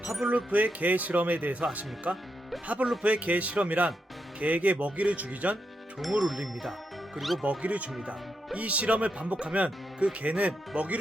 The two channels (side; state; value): both; normal; correlation 0.83